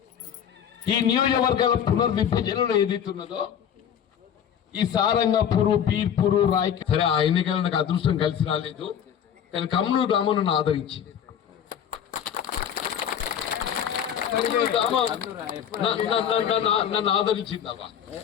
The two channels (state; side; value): quieter; right; 8.8 dB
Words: ఈ నియోజకవర్గాల పునర్విభజనలో ఏదైతున్నదో ఈ సారంగపూరు, బీర్పూరు, రాయకల్ సరే ఆ ఎన్నికల్లో నాకు అదృష్టం కలిసి రాలేదు, కానీ కమ్నూరు గ్రామం నన్ను ఆదరించింది. నన్ను ఆదరించింది అవ్వ.